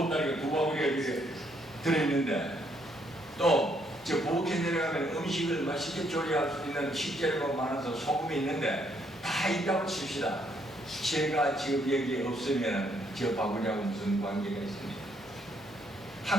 두 바구니가 이렇게 들어있는데 또 저 부엌에 내려가면 음식을 맛있게 조리할 수 있는 식재료가 많아서 소금이 있는데 다 있다고 칩시다. 제가 지금 여기에 없으면 저 바구니하고 무슨 관계가 있습니까?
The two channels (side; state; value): left; noise; hum, 27 dB below the sound